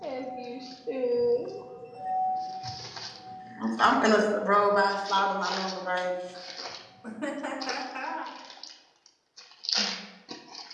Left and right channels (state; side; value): identical; both; correlation 1.00